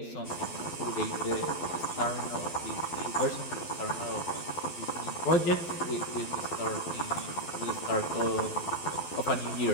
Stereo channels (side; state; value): right; late; 12 ms